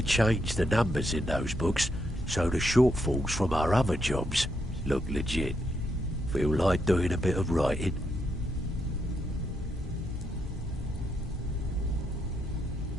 change the numbers in those books so the shortfalls from our other jobs look legit. Feel like doing a bit of writing?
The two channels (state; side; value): normal; both; correlation 0.79